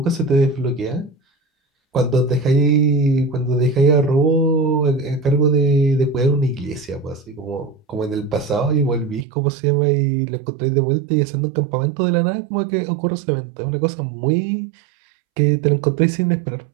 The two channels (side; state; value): left; drops out; at 9.2 s